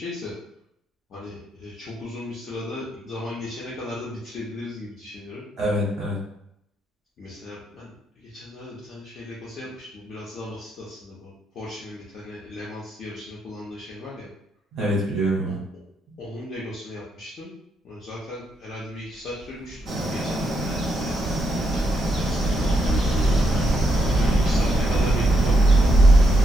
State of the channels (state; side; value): normal; both; correlation 0.79